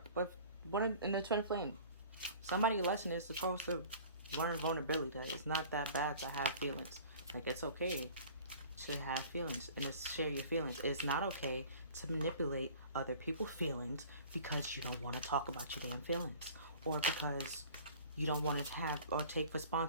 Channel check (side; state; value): both; inverted; correlation -0.45